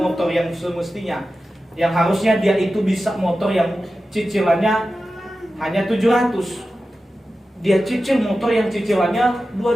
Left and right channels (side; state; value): both; normal; correlation 0.93